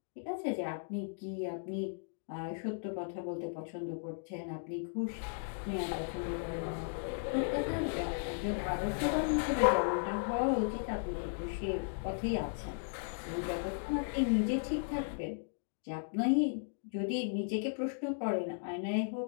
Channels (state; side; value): silent; right; digital silence